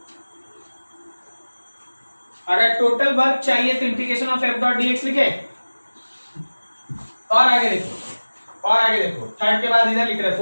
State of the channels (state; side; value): inverted; both; correlation -1.00